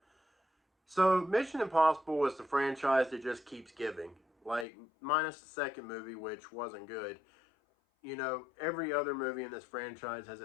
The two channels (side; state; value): right; drops out; at 4.7 s